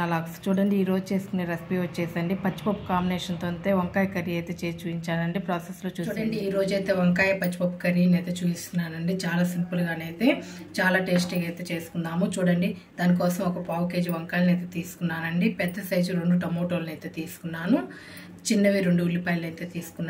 logs. చూడండి, ఈరోజు చేసుకునే రెసిపీ వచ్చేసండి పచ్చిపప్పు కాంబినేషన్తో అయితే వంకాయ కర్రీ అయితే చేసి చూపించానండి. ప్రాసెస్లో చూడండి, ఈరోజు అయితే వంకాయ పచ్చిపప్పు కర్రీని అయితే చూపిస్తున్నానండి. చాలా సింపుల్గానైతే చాలా టేస్టీగా అయితే చేసుకుందాము. చూడండి, దానికోసం ఒక పావు కేజీ వంకాయలను అయితే తీసుకున్నానండి. పెద్ద సైజు 2 టమోటోలను అయితే తీసుకున్నాను. చిన్నవి 2 ఉల్లిపాయలు అయితే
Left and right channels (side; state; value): both; identical; correlation 1.00